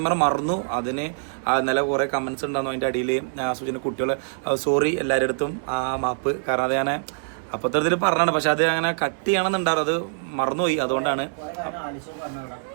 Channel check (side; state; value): left; silent; digital silence